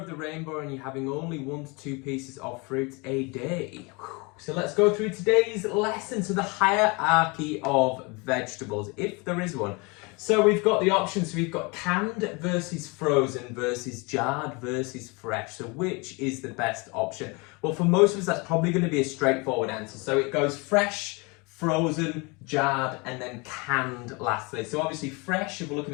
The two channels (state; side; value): quieter; right; 28.4 dB